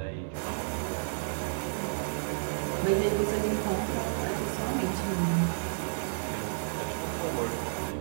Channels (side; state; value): left; silent; 57 dB below the other